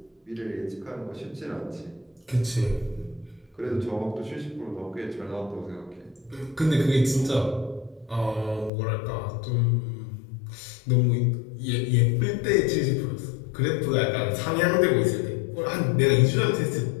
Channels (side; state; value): right; drops out; at 8.7 s